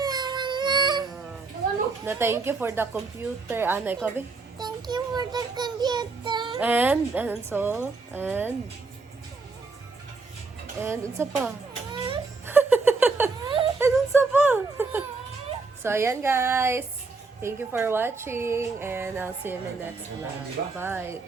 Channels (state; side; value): quieter; left; 4.0 dB